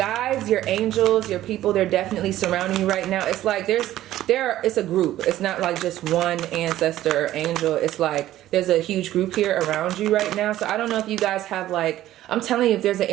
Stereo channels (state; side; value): quieter; left; 13.9 dB